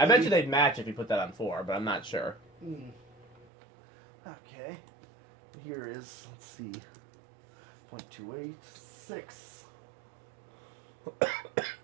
you they'd match if you put that on 4, but I'm not sure. Okay. Here is, let's see, 0.28, 6,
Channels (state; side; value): drops out; left; at 3.5 s